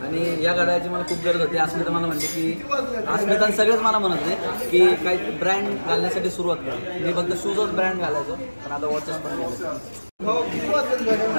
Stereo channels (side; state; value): both; inverted; correlation -1.00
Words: आणि या घड्याळाची मला खूप गरज होती. अस्मिता मला म्हणते की अस्मिता सगळेच मला म्हणत होते की काही ब्रँड घालण्यासाठी सुरुवात कर. मी फक्त शूजच ब्रँड घालायचो पण आता वॉचेस पण घालायचो.